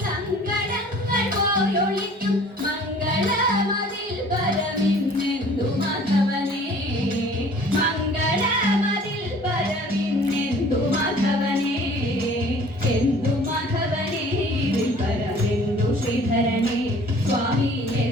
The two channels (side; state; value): both; normal; correlation 0.51